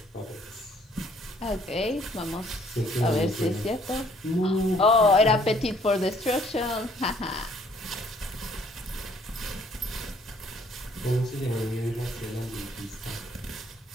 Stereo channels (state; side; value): normal; both; correlation 0.62